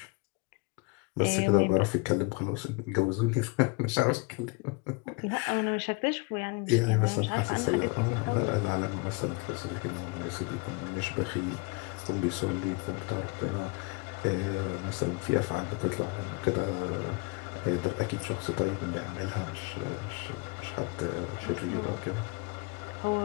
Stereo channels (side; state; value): right; quieter; 27.5 dB